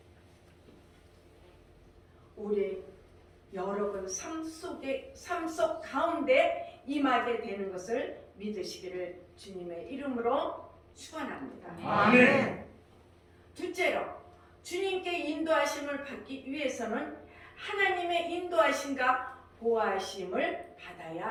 우리 여러분 삶 속 가운데 임하게 되는 것을 믿으시기를 주님의 이름으로 축원합니다. 아멘. 둘째로 주님께 인도하심을 받기 위해서는 하나님의 인도하심과 보호하심을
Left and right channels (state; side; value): identical; both; correlation 1.00